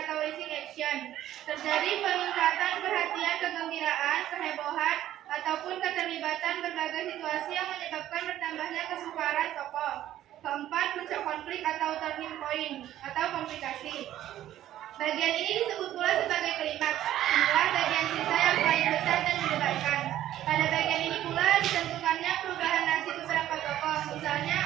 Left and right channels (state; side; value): quieter; left; 12.7 dB